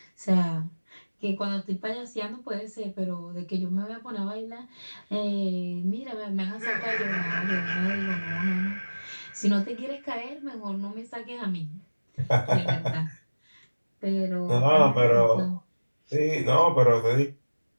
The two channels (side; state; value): both; inverted; correlation -1.00